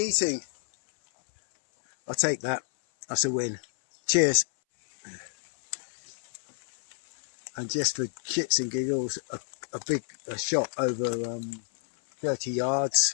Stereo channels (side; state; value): right; silent; 59 dB below the other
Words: I'll take that. That's a win. Cheers. And just for shits and giggles, a big shot over 30